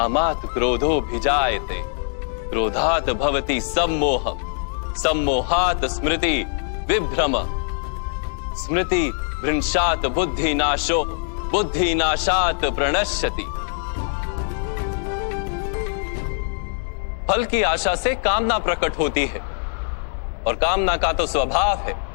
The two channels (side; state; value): right; silent; digital silence